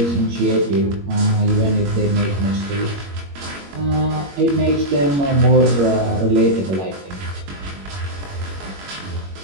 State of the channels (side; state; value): left; late; 21 ms